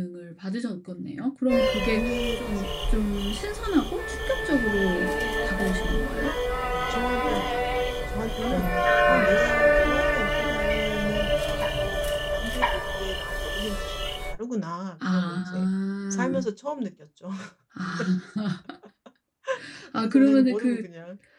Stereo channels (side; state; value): both; identical; correlation 1.00